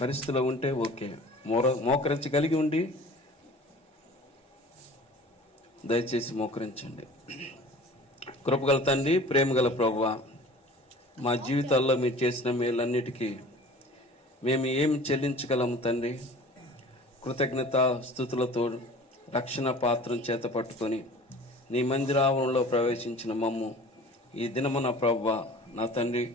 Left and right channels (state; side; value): normal; both; correlation 0.43